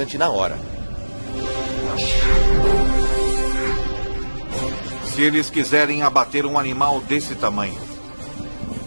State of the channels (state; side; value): inverted; both; correlation -1.00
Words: na hora. Se eles quiserem abater um animal desse tamanho,